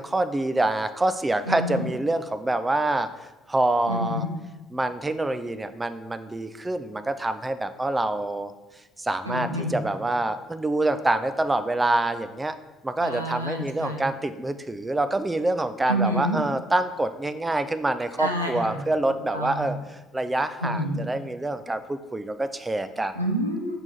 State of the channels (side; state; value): both; normal; correlation 0.77